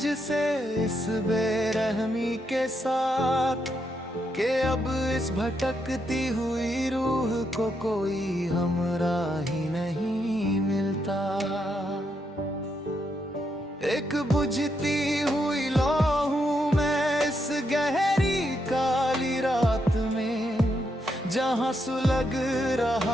इस बेरहमी के साथ, कि अब इस भटकती हुई रूह को कोई हमराही नहीं मिलता। एक बुझती हुई लौ हूं मैं इस गहरी काली रात में, जहां सुलग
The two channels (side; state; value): both; normal; correlation 0.80